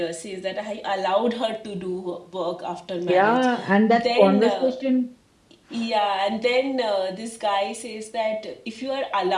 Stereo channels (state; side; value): identical; both; correlation 1.00